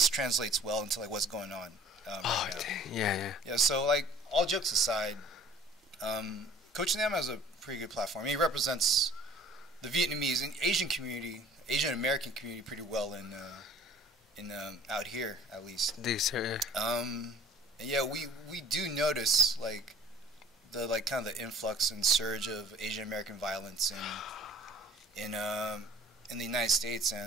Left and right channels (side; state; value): both; normal; correlation 0.51